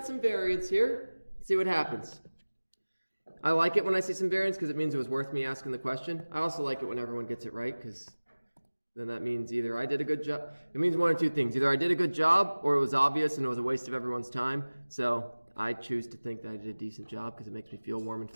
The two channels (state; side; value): inverted; both; correlation -1.00